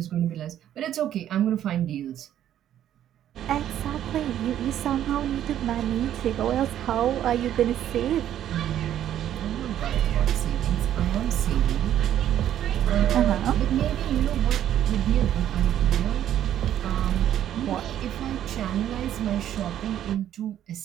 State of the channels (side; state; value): left; quieter; 11.1 dB